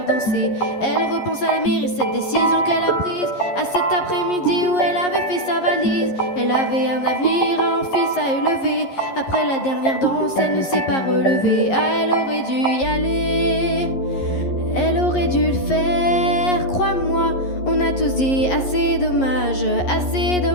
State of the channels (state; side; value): late; right; 11 ms